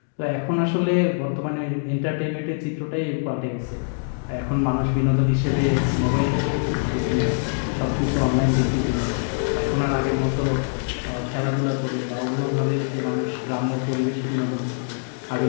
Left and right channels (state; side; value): silent; right; digital silence